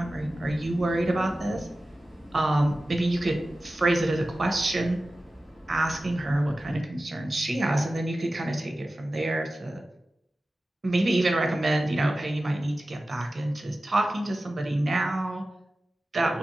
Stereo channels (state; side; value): normal; both; correlation 0.95